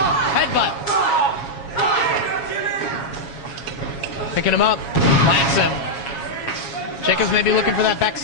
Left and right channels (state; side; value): late; right; 7.2 ms